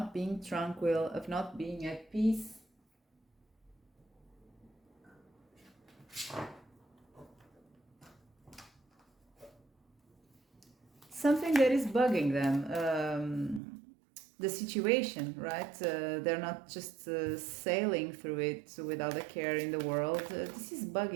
being tranquil, of not being at peace. Something that is bugging them, the situation, right? They're not just sailing through it without a care in the world. This is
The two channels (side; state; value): left; drops out; at 13.6 s